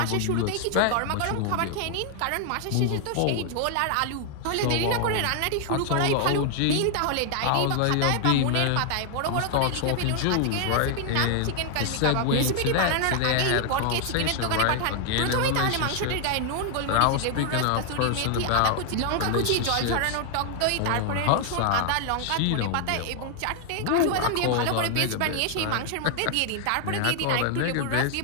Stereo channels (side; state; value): both; different; correlation 0.00